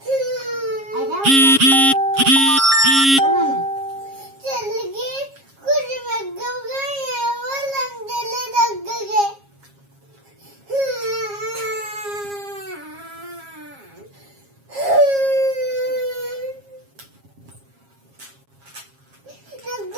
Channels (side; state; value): left; late; 7.4 ms